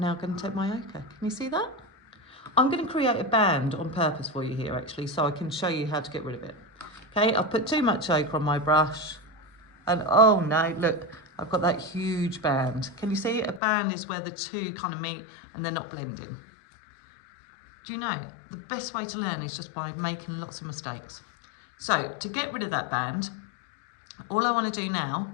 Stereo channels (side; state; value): right; drops out; at 13.6 s